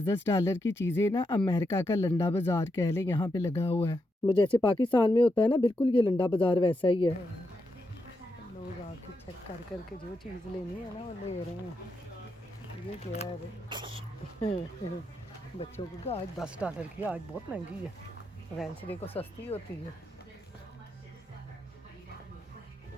की चीज़ें ना अमेरिका का लंडा बाज़ार कह लें, यहाँ पे लगा हुआ है। वो जैसे पाकिस्तान में होता है ना, बिल्कुल ये लंडा बाज़ार वैसा ही है। लोग आके चेक कर करके जो चीज़ लेनी है ना वो ले रहे हैं। ये क्या है भाई? बच्चों को आज $10 की, आज बहुत महंगी है। वेंसडे को सस्ती होती है।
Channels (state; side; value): normal; both; correlation 0.84